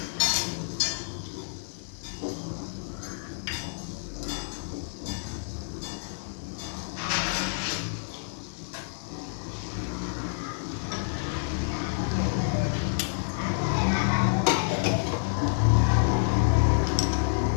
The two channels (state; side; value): silent; right; digital silence